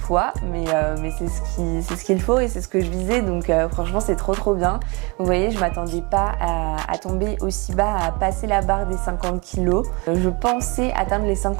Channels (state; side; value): quieter; left; 28.9 dB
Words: mais c'est ce qu'il faut et c'est ce que je visais, donc franchement c'est trop bien. Vous voyez, je m'attendais pas à tomber aussi bas, à passer la barre des 50 kg. Je pensais atteindre les